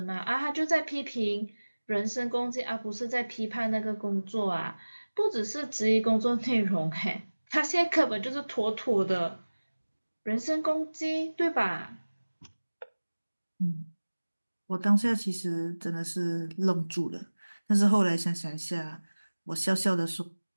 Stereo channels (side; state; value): both; inverted; correlation -1.00